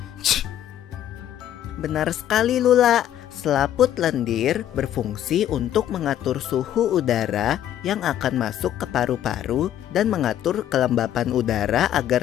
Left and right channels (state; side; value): quieter; right; 11.3 dB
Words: Benar sekali, Lula. Selaput lendir berfungsi untuk mengatur suhu udara yang akan masuk ke paru-paru dan mengatur kelembapan udara agar